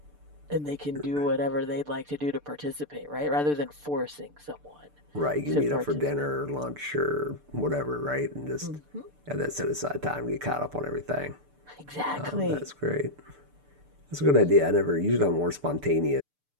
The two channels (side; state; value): left; late; 6.8 ms